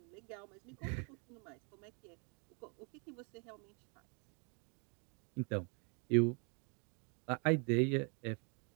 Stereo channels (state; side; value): quieter; left; 36.0 dB